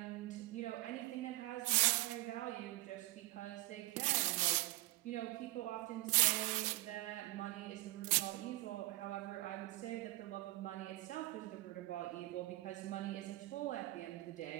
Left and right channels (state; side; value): quieter; left; 19.7 dB